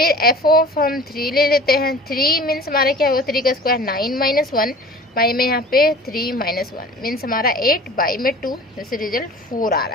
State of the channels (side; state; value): both; normal; correlation 0.42